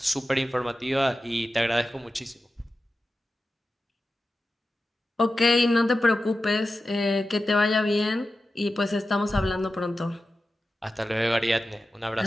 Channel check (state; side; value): normal; both; correlation 0.93